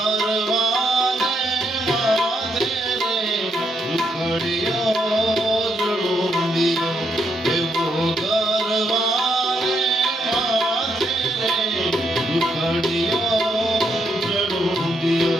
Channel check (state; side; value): normal; both; correlation 0.77